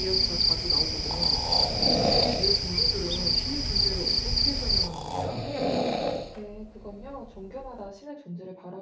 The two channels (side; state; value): both; identical; correlation 1.00